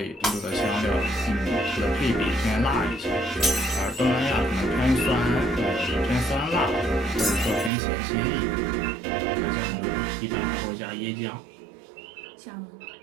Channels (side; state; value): left; drops out; at 7.7 s